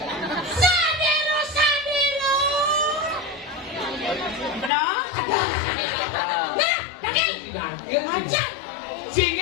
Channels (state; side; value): drops out; right; at 4.7 s